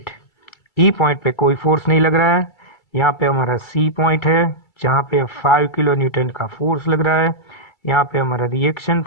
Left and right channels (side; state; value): right; late; 2.3 ms